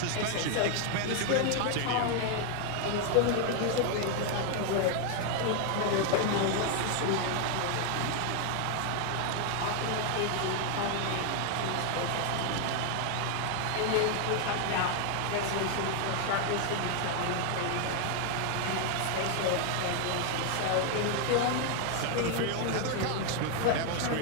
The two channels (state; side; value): different; both; correlation 0.00